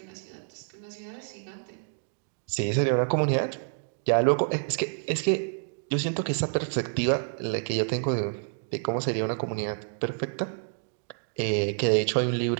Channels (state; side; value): silent; left; digital silence